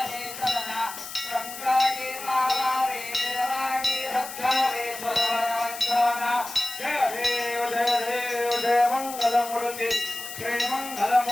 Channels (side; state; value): left; noise; hiss, 11 dB below the sound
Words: सदना संकटे मावारे निर्वाणी रक्षावे सर्ववंदना. जय देव जय मंगलमूर्ति श्री